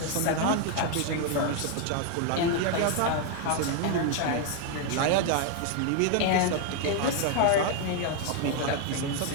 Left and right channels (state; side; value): different; both; correlation 0.01